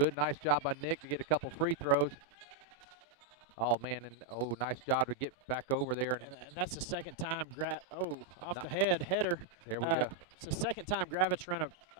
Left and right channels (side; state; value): left; quieter; 3.2 dB